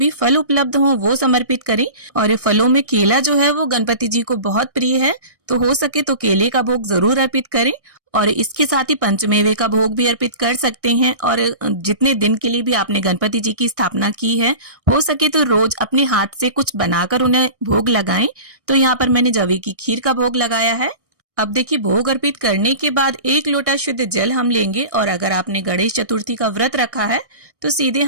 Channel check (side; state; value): left; late; 1.6 ms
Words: फल उपलब्ध हों वो समर्पित करें। और फलों में केला जो है वो गणपति जी को बहुत प्रिय है, तो हो सके तो केले का भोग जरूर अर्पित करें। और इसके साथ ही पंचमेवे का भोग भी अर्पित कर सकते हैं। और जितने दिन के लिए भी आपने गणपति जी की स्थापना की है, हो सके तो रोज अपने हाथ से कुछ बनाकर उन्हें भोग लगाएं। तो यहाँ पर मैंने जवे की खीर का भोग लगाया है। अब देखिए भोग अर्पित करने के बाद 1 लोटा शुद्ध जल हम लेंगे और अगर आपने गणेश चतुर्थी का व्रत रखा है तो सीधे